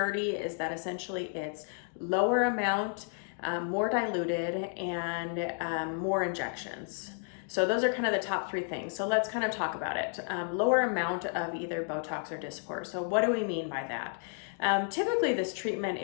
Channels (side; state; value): right; silent; 57 dB below the other